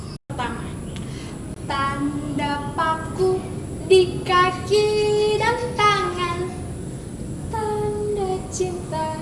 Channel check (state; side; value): identical; both; correlation 1.00